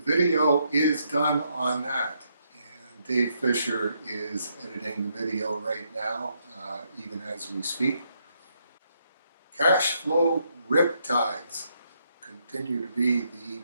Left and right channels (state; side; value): inverted; both; correlation -0.76